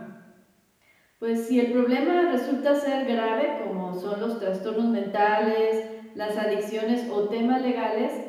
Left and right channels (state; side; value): identical; both; correlation 1.00